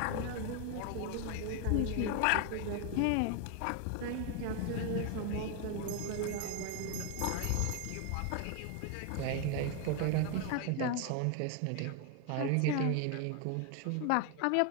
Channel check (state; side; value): different; both; correlation 0.01